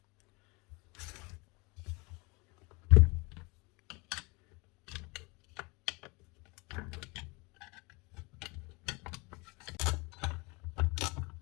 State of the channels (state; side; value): quieter; right; 27.4 dB